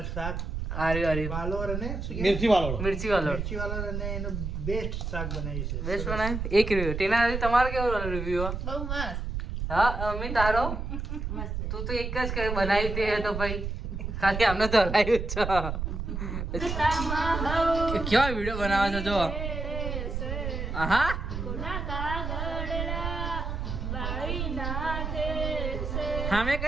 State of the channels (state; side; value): noise; right; rumble, 4 dB below the sound